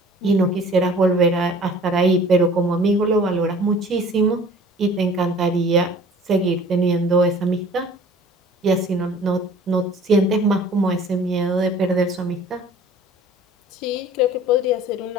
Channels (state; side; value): normal; both; correlation 0.49